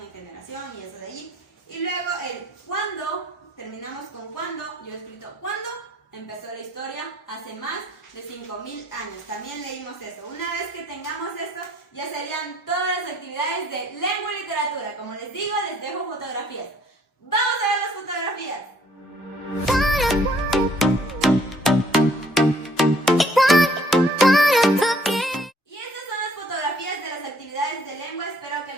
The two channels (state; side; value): normal; both; correlation 0.61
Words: generación y eso de allí. Y luego el cuándo, terminamos con cuándo. Yo he escrito cuándo empezó la historia, hace más de 5.000 años. También leímos eso. Una vez que tengamos esto, ya serían todas las actividades de lengua y literatura. Como les digo, les dejo fotografías. ¡Vamos a ver las fotografías! Y estas son las fotografías de las actividades de lengua. Espero que